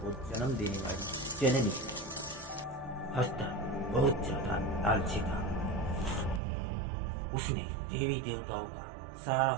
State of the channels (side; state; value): left; drops out; at 6.4 s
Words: जन्म देने वाली जननी। हस्तर बहुत ज्यादा लालची था। उसने देवी देवताओं का सारा